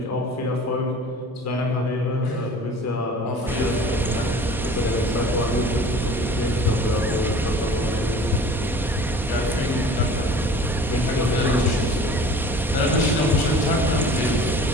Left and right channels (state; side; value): normal; both; correlation 0.45